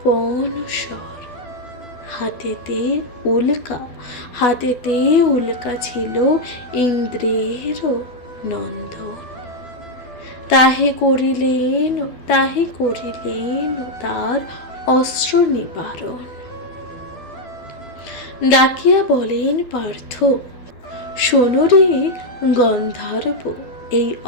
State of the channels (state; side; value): late; right; 12 ms